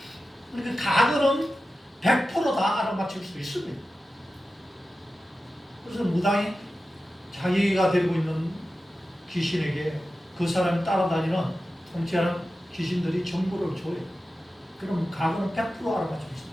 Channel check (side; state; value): both; normal; correlation 0.93